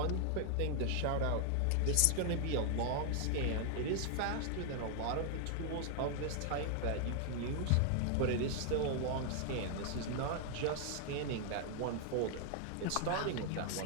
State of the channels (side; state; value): both; different; correlation 0.00